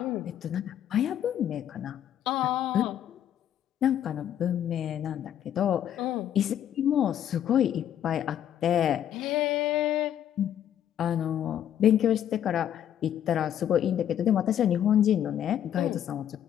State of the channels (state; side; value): quieter; right; 10.3 dB